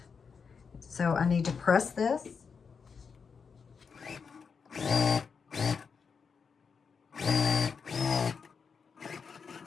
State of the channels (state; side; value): quieter; right; 5.8 dB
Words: So I need to press this.